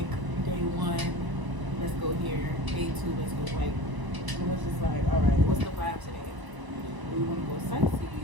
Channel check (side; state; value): left; late; 1.0 ms